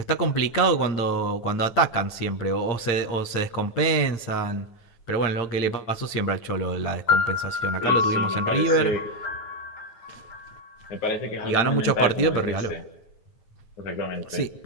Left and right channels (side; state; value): right; late; 9.3 ms